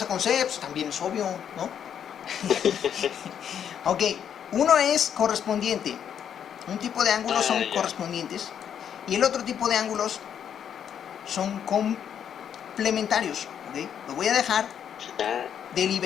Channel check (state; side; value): quieter; right; 8.7 dB